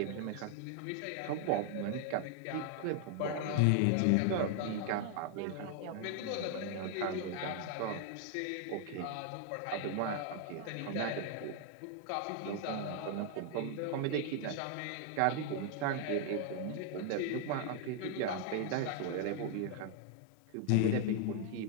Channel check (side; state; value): both; different; correlation 0.00